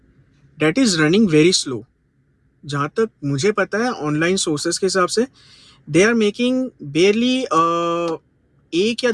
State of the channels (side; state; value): both; identical; correlation 1.00